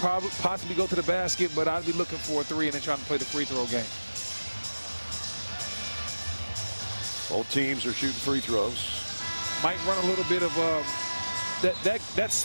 go to the basket, but I'd be looking for a 3 and then trying to play the free throw game. Both teams are shooting free throws. Might run a little bit of that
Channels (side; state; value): both; inverted; correlation -1.00